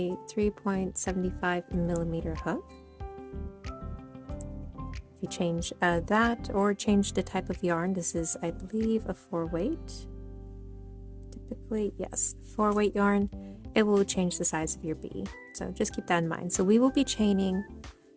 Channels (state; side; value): identical; both; correlation 1.00